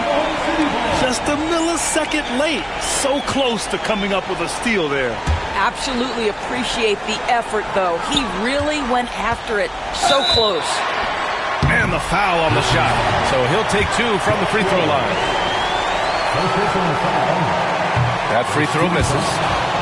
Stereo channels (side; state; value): both; identical; correlation 1.00